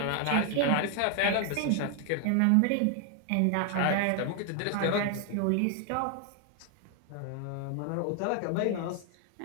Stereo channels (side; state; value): both; different; correlation 0.00